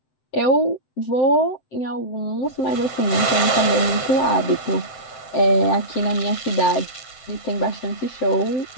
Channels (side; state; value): right; late; 7.8 ms